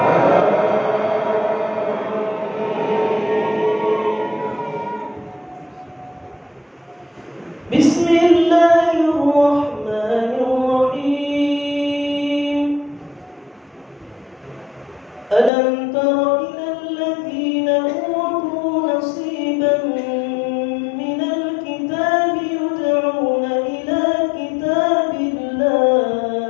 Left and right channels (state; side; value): drops out; right; at 15.5 s